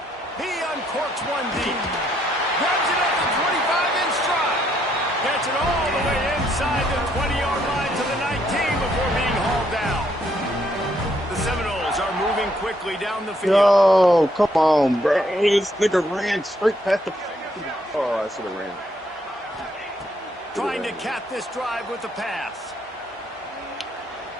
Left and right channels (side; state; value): both; normal; correlation 0.71